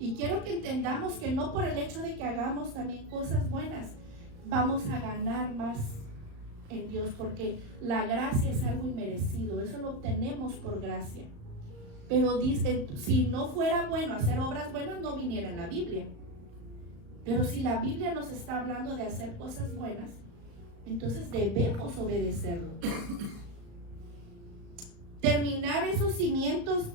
quiero que entendamos que no por el hecho de que hagamos también cosas buenas vamos a ganar más en Dios, porque la gracia es algo inmerecido, eso lo obtenemos por gracia. Pero dice, si no fuera bueno hacer obras buenas, no viniera en la Biblia. Pero si la Biblia nos está hablando de hacer cosas buenas, entonces debemos obedecerlo. Terminar esos cimientos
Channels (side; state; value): left; late; 36 ms